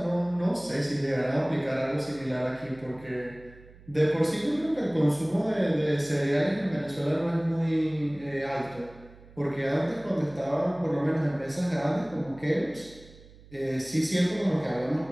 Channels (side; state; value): right; noise; hum, 22 dB below the sound